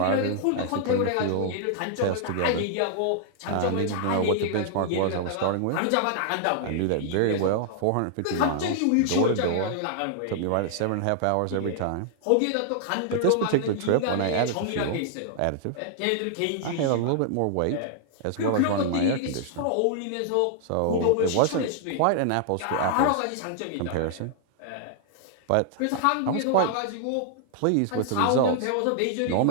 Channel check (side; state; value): both; different; correlation -0.01